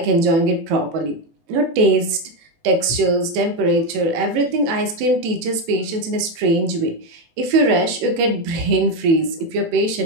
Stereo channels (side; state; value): left; late; 18 ms